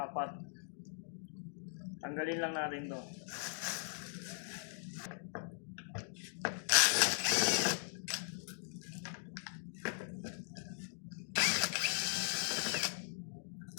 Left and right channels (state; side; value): silent; right; digital silence